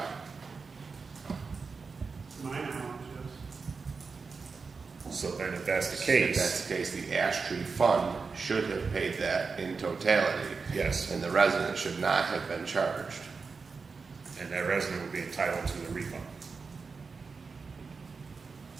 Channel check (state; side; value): quieter; left; 4.8 dB